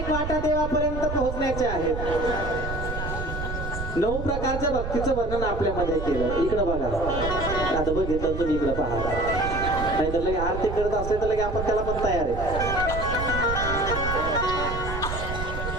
वाटा देवापर्यंत पोहोचण्याच्या आहेत. 9 प्रकारच्या भक्तीचं वर्णन आपल्यामध्ये केलं. इकडं बघा, आता बघितलं तुम्ही इकडं पहा. नाही तर लगे आरती करत असले तर लगे आपण त्याला पण तयार आहे.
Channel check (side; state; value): right; noise; rumble, 5 dB below the sound